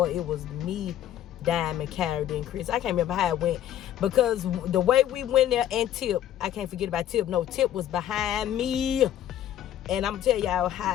it was me, Diamond, Kyrie, then Chris. I can't remember how it went, because the way we went there, and Tip, I can't forget about Tip. No, Tip was behind me, and I'm gonna tell y'all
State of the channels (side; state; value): right; quieter; 11.5 dB